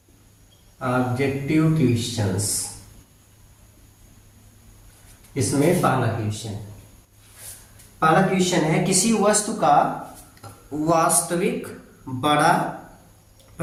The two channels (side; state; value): both; identical; correlation 1.00